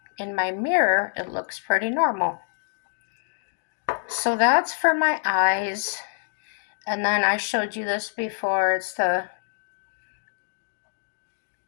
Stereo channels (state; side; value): silent; right; digital silence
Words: in my mirror it looks pretty normal. So that's for my eyes. And then I showed you this before. It's the